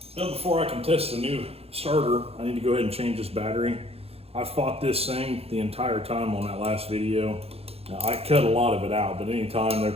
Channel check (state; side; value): late; left; 0.29 ms